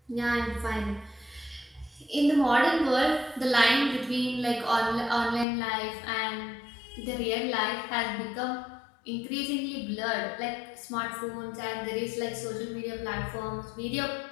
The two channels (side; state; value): right; drops out; at 5.5 s